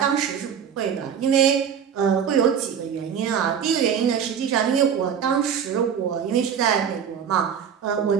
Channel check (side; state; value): left; quieter; 7.8 dB